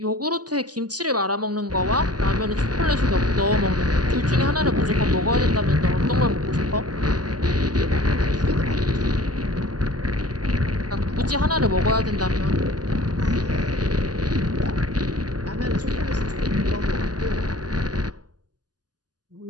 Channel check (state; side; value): late; left; 0.69 ms